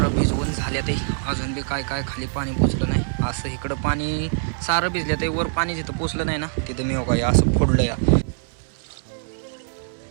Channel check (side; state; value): left; silent; digital silence